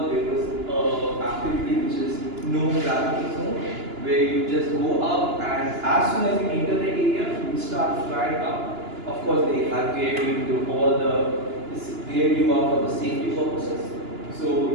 there was an activity which is no gravity zone, where you just go up and as soon as you enter the area, you start flying up. Of course, they have geared you to all geared you up for the safety purposes. So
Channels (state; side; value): late; left; 2.9 ms